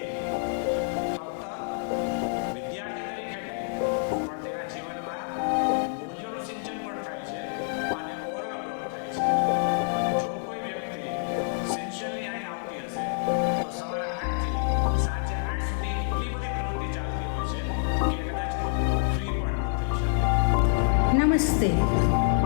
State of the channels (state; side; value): silent; right; digital silence